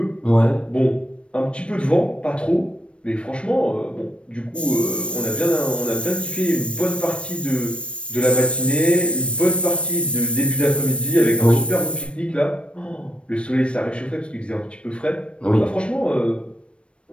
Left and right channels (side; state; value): right; late; 0.059 ms